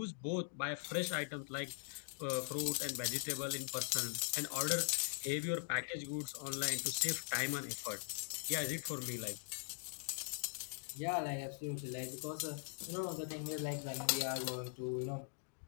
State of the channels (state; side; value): silent; right; digital silence